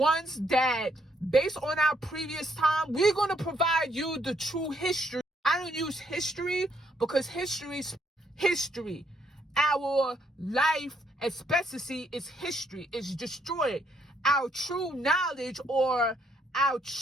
that, based on our previous time, we're going to provide you the true history. I don't use history because history's history. Our life expectancy is history. It's destroyed. Our true knowledge or our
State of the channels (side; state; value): both; normal; correlation 0.71